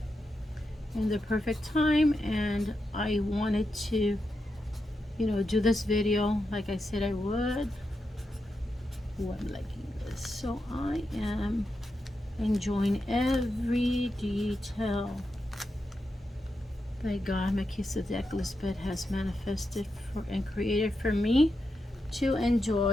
in the perfect time, and I wanted to, you know, do this video like I said I would. Oh, I'm liking this. So I am enjoying every detail that God, Melchizedek Lisbeth, has manifested for and created for me to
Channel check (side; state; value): both; normal; correlation 0.87